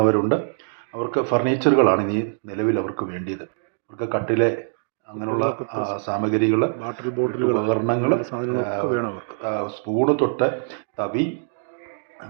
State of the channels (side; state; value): left; silent; digital silence